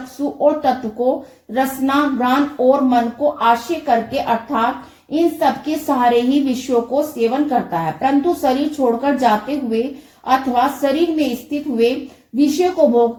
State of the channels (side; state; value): both; identical; correlation 1.00